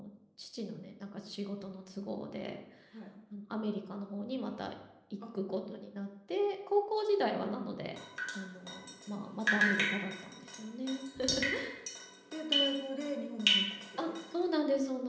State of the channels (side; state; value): both; identical; correlation 1.00